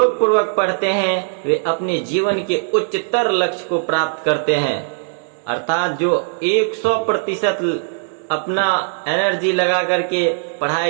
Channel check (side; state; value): left; silent; digital silence